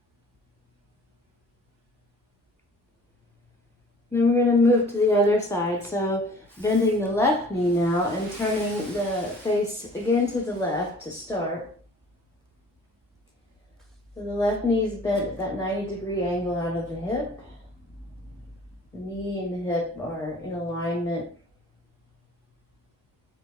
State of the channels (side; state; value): both; normal; correlation 0.50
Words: Then we're going to move to the other side. So bending the left knee now and turning the face again to the left to start. So the left knee is bent at that 90-degree angle out of the hip. The knee and the hip are in alignment.